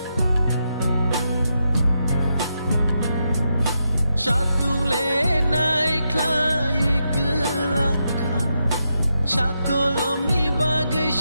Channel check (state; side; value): inverted; both; correlation -0.84